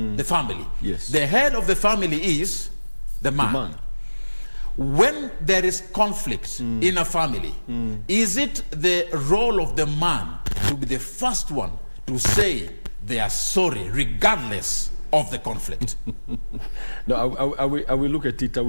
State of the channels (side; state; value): both; inverted; correlation -1.00